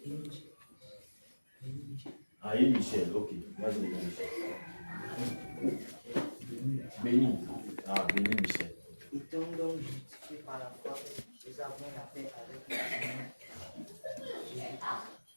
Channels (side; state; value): both; inverted; correlation -1.00